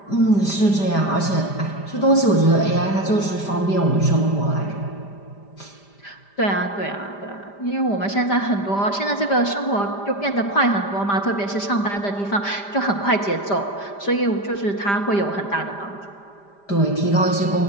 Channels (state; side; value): late; right; 5.0 ms